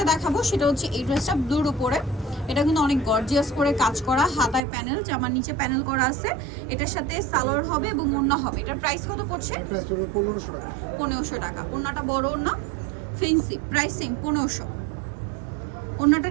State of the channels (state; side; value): drops out; left; at 4.6 s